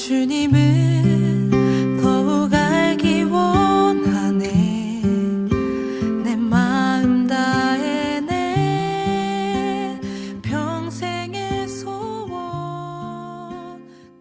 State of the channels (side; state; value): both; identical; correlation 1.00